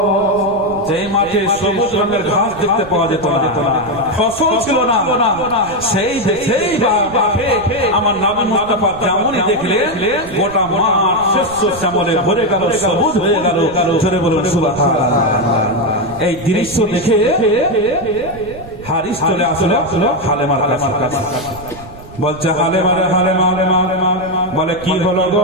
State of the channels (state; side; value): noise; right; rumble, 17 dB below the sound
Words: যেই মাঠে সবুজ রঙের ঘাস দেখতে পাওয়া যেত না, ফসল ছিল না, সেই মাঠে আমার নবী মুস্তাফা যেমনই দেখলে গোটা মাঠ শ্যামলে ভরে গেল, সবুজ হয়ে গেল। জোরে বলুন সুবহানাল্লাহ। এই দৃশ্য দেখে হারিস চলে আসলো হালেমার কাছে, বলছে হালেমা, বলে কি হলো